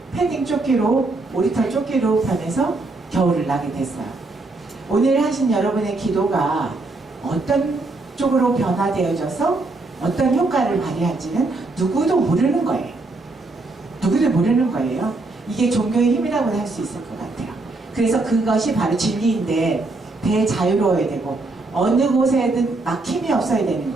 패딩 조끼로, 오리털 조끼로 변해서 겨울을 나게 됐어요. 오늘 하신 여러분의 기도가 어떤 쪽으로 변화되어져서 어떤 효과를 발휘할지는 누구도 모르는 거예요. 누구도 모르는 거예요. 이게 종교의 힘이라고 할 수 있을 것 같아요. 그래서 그것이 바로 진리인데 대자유로워야 되고 어느 곳에든 막힘이 없어야 되는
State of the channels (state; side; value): quieter; left; 3.2 dB